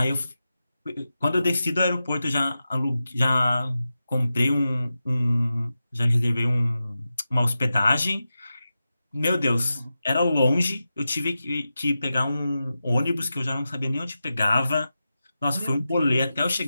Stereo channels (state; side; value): inverted; both; correlation -0.92